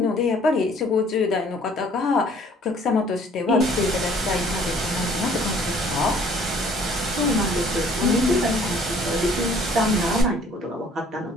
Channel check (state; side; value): normal; both; correlation 0.57